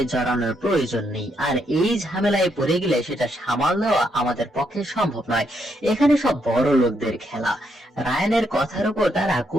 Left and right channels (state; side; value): normal; both; correlation 0.76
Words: জড়ানোর প্রয়োজন নেই। আর এই ঝামেলায় পড়ে গেলে সেটা সামাল দেওয়া আমাদের পক্ষে সম্ভব নয়, এখানে সব বড় লোকদের খেলা। রায়ানের কথার উপর তারা